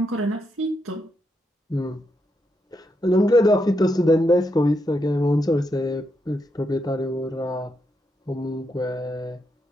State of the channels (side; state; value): both; normal; correlation 0.82